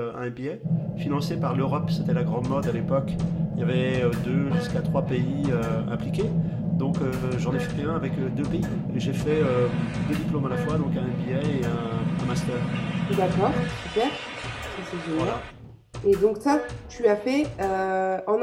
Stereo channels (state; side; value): identical; both; correlation 1.00